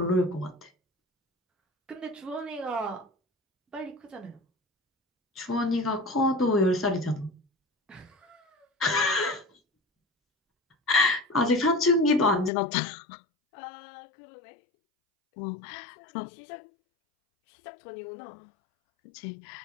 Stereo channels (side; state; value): right; drops out; at 12.5 s